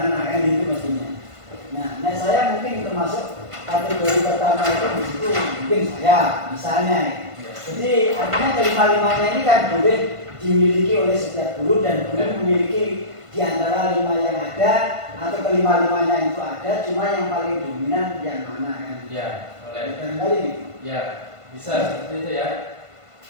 kan itu mestinya. Nah saya mungkin termasuk kategori pertama itu di situ mungkin saya misalnya. Jadi artinya kelima-limanya ini kan boleh dimiliki oleh setiap guru dan guru memiliki di antara 5 yang ada atau kelima-limanya itu ada, cuma yang paling dominan yang mana kan? Ya, boleh. Barangkali Ya, bisa seperti itu ya.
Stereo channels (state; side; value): late; left; 1.5 ms